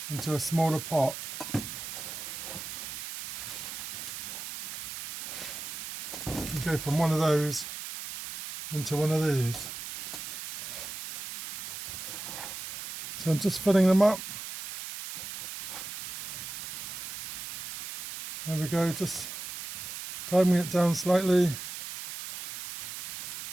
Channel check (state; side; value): noise; right; hiss, 8 dB below the sound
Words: into a smaller pot. And go from one of those into one of these. So I'm just filling them up. There we go, just firming it down slightly.